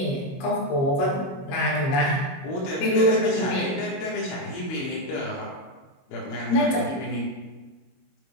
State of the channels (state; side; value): late; right; 22 ms